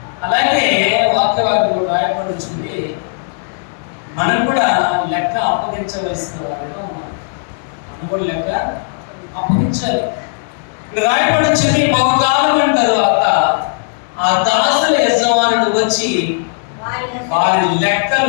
అలాగే వాక్యవాక్యం రాయబడి వచ్చింది, మనం కూడా లెక్క అప్పగించవలసిన వారిగా ఉన్నాం. మనం కూడా లెక్క అప్పగించాలి. ఇప్పుడు రాయబడి వచ్చింది, బహుకాలం తర్వాత ఆ దాసుల యజమానుడు వచ్చి వారి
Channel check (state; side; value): silent; right; digital silence